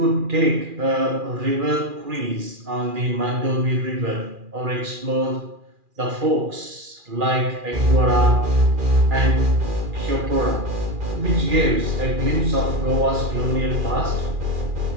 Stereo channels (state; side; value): late; left; 2.4 ms